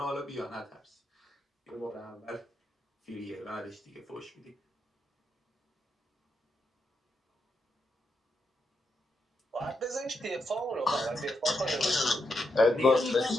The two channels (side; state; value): both; normal; correlation 0.83